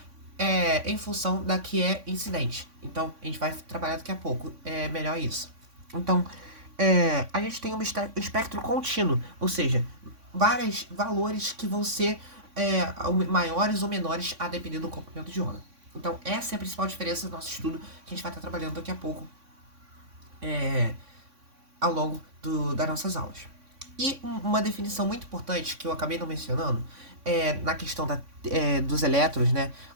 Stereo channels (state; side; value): late; left; 3.6 ms